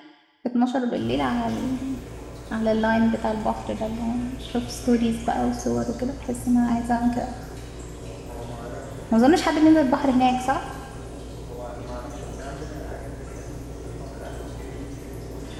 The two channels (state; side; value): identical; both; correlation 1.00